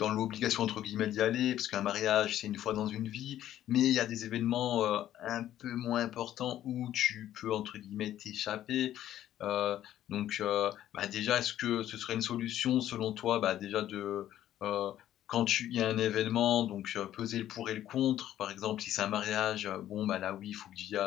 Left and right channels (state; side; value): quieter; right; 12.2 dB